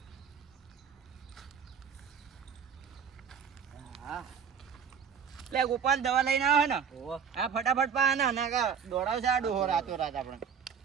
હા લે ગોપાલ દવા લઈને આવે ને હા ફટાફટ પા ને ના કા દોડાવશે આ ડોહો રાતો રાત આપણે.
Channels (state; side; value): quieter; left; 7.0 dB